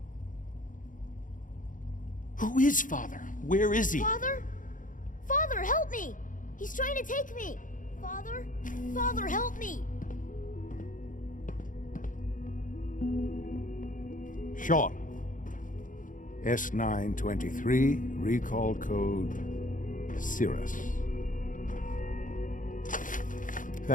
Who is Father? Where is he? Father? Father, help me! He's trying to take me! Father? Father, help me! Sean. S923, recall code Cirrus.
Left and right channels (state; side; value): late; right; 0.38 ms